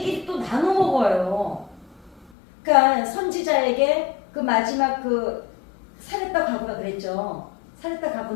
또 나눠 먹어요. 그러니까 선지자에게 그 마지막 그 사렙다 과부가 그랬죠. 사렙다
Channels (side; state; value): right; drops out; at 2.3 s